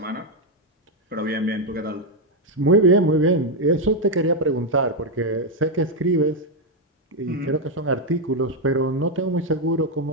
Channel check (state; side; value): normal; both; correlation 0.02